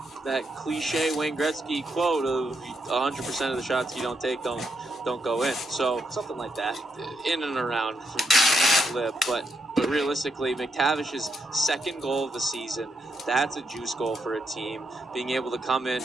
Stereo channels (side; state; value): both; normal; correlation 0.79